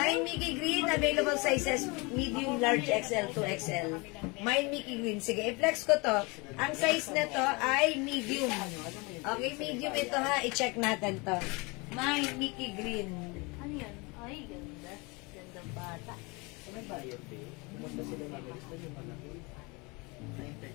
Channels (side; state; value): right; quieter; 27.4 dB